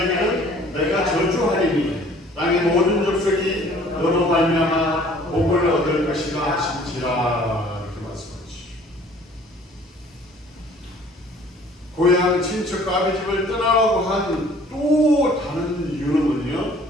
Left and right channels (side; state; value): both; normal; correlation 0.54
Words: 내가 저주하리니 땅의 모든 족속이 너로 말미암아 복을 얻을 것이라 하신지라. 이렇게 말씀하시죠. 고향 친척과 아비 집을 떠나라고 한 또 다른 이유는 뭐냐?